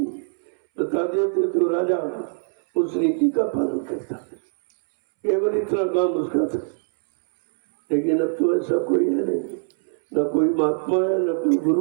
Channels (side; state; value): left; silent; 64 dB below the other